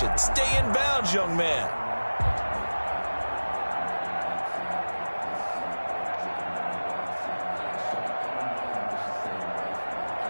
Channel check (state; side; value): inverted; both; correlation -1.00